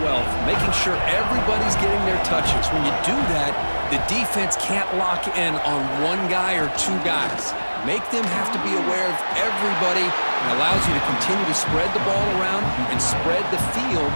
wealth, making sure everybody's getting their touches. When you do that, the defense can't lock in on one guy or two guys. Make them have to be aware of everybody and allows you to continue to spread the ball around and spread the field,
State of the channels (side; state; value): both; inverted; correlation -1.00